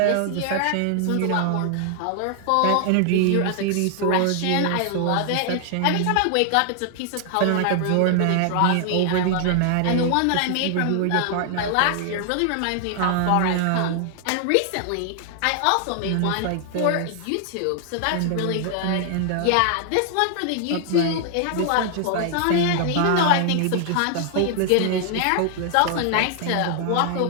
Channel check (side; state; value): both; different; correlation 0.00